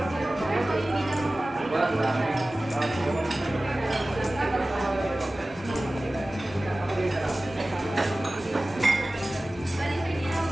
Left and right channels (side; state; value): both; normal; correlation 0.97